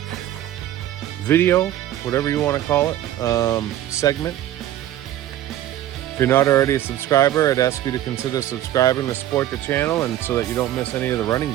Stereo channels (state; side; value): quieter; left; 12.9 dB